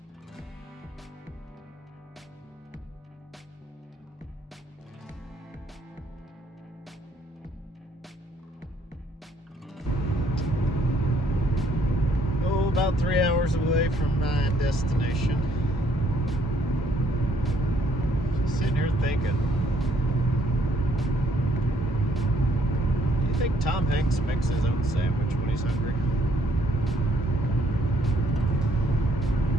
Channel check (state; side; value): normal; both; correlation 0.67